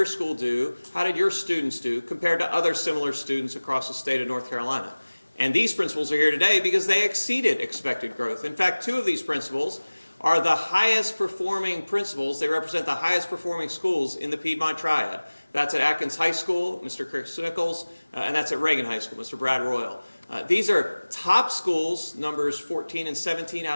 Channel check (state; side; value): inverted; both; correlation -1.00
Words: school do, how did your students do compared to other similar students across the state of North Carolina? And these principals are here today because they exceeded expected growth. In fact, 2 of these principals are the highest performing principals. They represent the highest performing schools in the Piedmont Triad. That's at Atkins High School, Mr. Chris Nichols, and that's at Reagan High School, Mr. Brad Royal. These are top schools, numbers 14 and 17